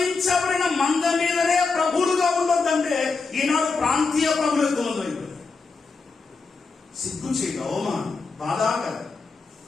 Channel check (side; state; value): right; quieter; 4.4 dB